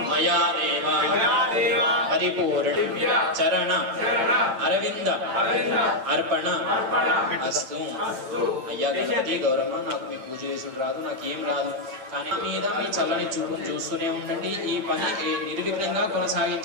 మయా దేవ పరిపూర్ణ చరణ అరవింద అర్పణ అస్తు అయ్యా గణపతి గౌరమ్మ నాకు మీ పూజ చేసుడు రాదు నాకేం రాదు కానీ మీద మీ చల్లని చూపును చూస్తూనే ఉండండి ఈ పని నిర్విఘ్నంగా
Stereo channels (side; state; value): left; late; 9.1 ms